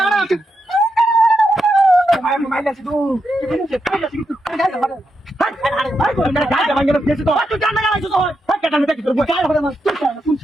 আনা ভাই মাইলা শুধু কি বলছিস পাইলা শুধু গাড়ি ভাড়া ভাই কোন গাড়ি ভাঙ্গা ফেসে তো তুই জানা না তো ভাই কাটানো দেখি তোর গাড়ি ভাড়া তুই কোন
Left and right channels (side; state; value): both; normal; correlation 0.84